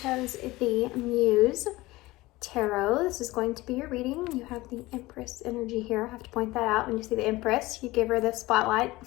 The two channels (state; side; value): quieter; right; 19.6 dB